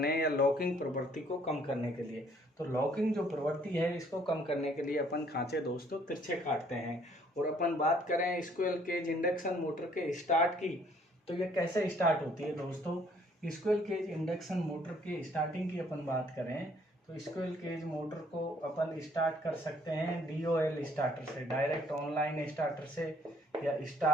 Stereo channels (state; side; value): normal; both; correlation 0.62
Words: या लॉकिंग प्रवृत्ति को कम करने के लिए। तो लॉकिंग जो प्रवृत्ति है इसको कम करने के लिए अपन खांचे दोस्तों तिरछे काटते हैं। और अपन बात करें स्क्विरल केज इंडक्शन मोटर के स्टार्ट की, तो ये कैसे स्टार्ट होती है दोस्तों। स्क्विरल केज इंडक्शन मोटर के स्टार्टिंग की अपन बात करें तो स्क्विरल केज मोटर को अपन स्टार्ट कर सकते हैं DOL स्टार्टर से, डायरेक्ट ऑनलाइन स्टार्टर से, या